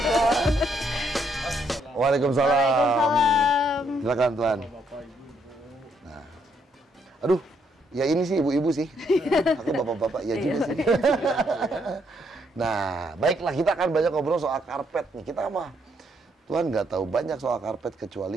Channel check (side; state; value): both; normal; correlation 0.73